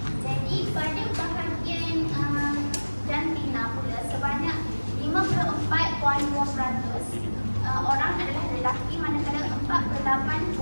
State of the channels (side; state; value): both; inverted; correlation -1.00